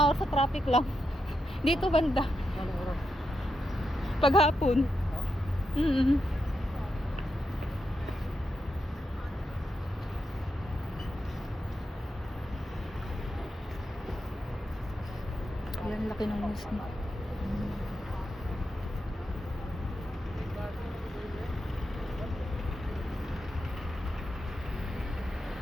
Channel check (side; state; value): both; normal; correlation 0.85